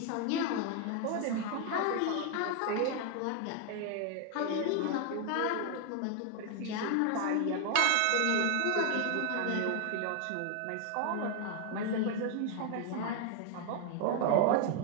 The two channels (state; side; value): different; both; correlation 0.00